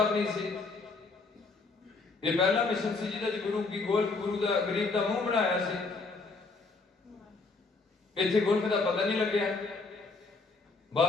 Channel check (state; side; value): quieter; right; 3.9 dB